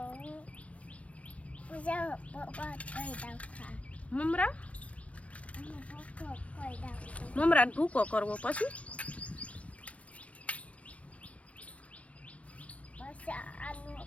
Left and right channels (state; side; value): late; right; 0.064 ms